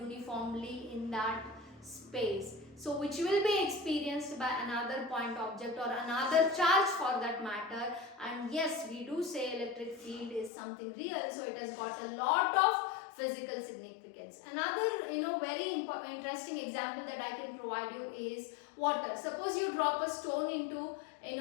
in that space. So which will be experienced by another point object or another charge for that matter. And yes, we do say electric field is something real. So it has got a lot of physical significance. Another very interesting example that I can provide you is water. Suppose you drop a stone into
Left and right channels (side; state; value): right; drops out; at 10.5 s